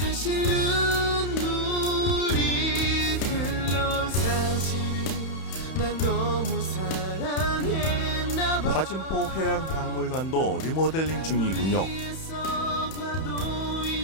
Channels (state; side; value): late; right; 31 ms